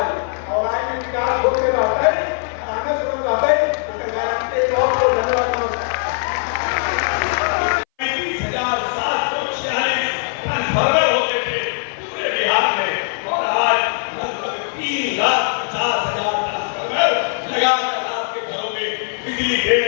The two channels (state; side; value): silent; right; 61 dB below the other